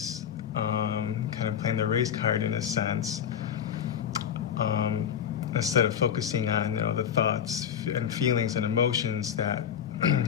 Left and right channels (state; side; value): quieter; right; 8.6 dB